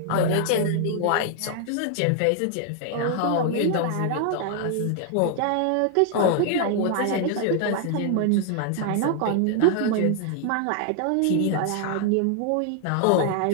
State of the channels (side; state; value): both; different; correlation 0.00